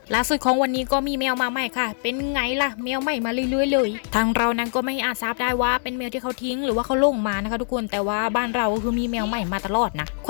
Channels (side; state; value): right; silent; digital silence